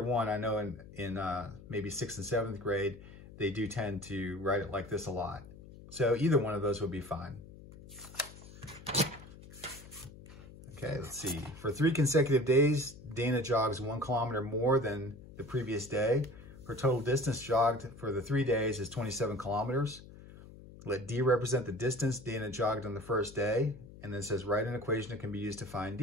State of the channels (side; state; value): left; noise; hum, 17 dB below the sound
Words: one, I know in maybe 6th and 7th grade, they do tend to write it like this a lot. So either one of those would be fine. Okay, let's see. For 3 consecutive days, Dana jogs 1 kilometer more than the previous day. Her total distance jogged for the 3 days is 27 kilometers. Let D represent the distance Dana jogged on the first day. And then it says, write an equation that can be used to find